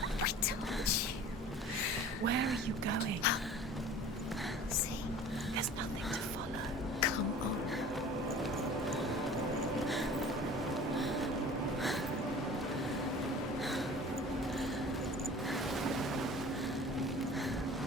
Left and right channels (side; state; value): both; normal; correlation 0.43